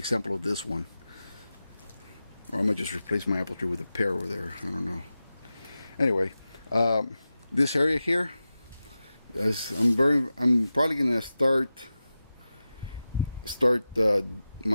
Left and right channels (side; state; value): both; inverted; correlation -0.93